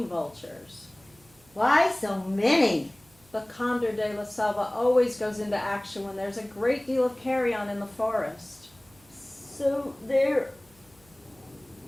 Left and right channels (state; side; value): noise; right; hum, 29 dB below the sound